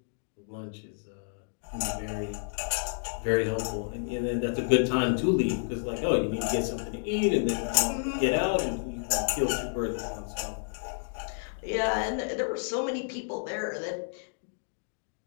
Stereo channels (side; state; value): right; silent; digital silence